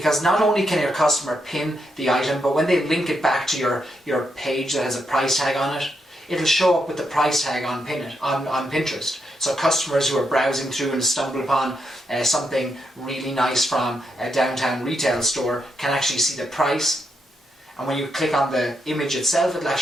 not only can your customer pin the item, but when they link it back to your page that has a price tag on it, it'll show up with the price tag on Pinterest. So customers who are browsing through and stumble upon something really nice from a downtown retail store can actually see the price. And when you click on the image itself, it'll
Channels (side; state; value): both; normal; correlation 0.81